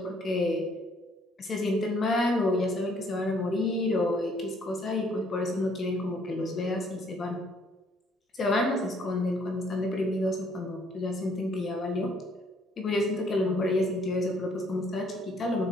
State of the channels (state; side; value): normal; both; correlation 0.64